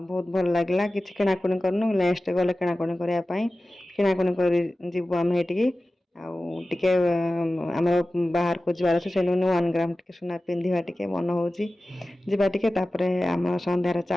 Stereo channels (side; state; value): both; normal; correlation 0.96